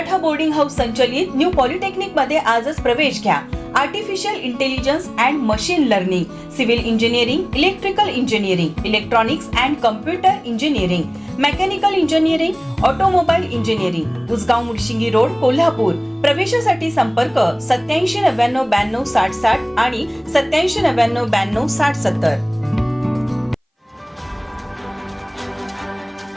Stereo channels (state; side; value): identical; both; correlation 1.00